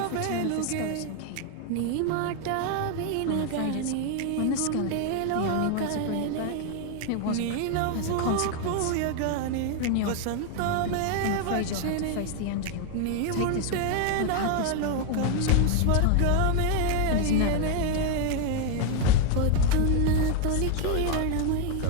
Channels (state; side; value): different; both; correlation 0.01